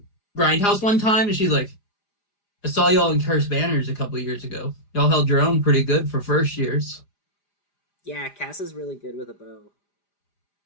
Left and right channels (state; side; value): late; right; 4.9 ms